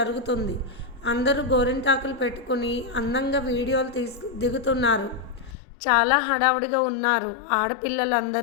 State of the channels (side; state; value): right; drops out; at 5.6 s